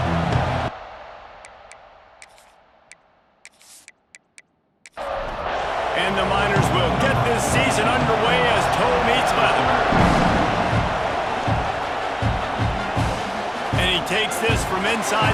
And the Miners will get this season underway as toe meets leather. And he takes this from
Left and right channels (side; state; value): both; identical; correlation 1.00